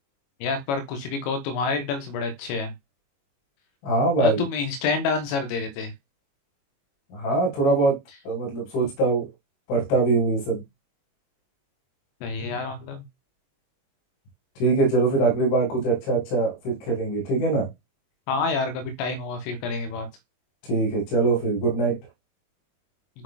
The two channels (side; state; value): right; late; 22 ms